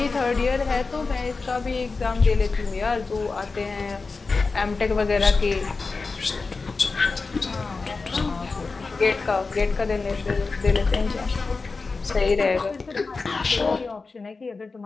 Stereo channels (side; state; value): right; quieter; 4.1 dB